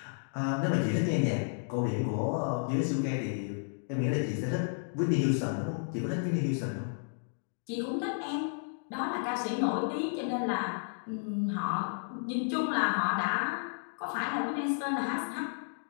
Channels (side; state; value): right; silent; digital silence